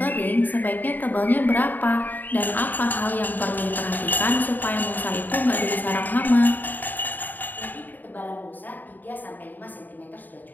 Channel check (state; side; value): late; right; 0.087 ms